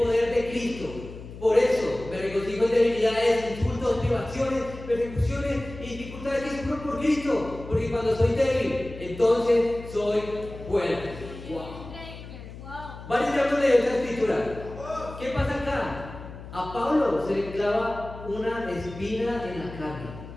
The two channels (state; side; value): noise; left; hum, 13 dB below the sound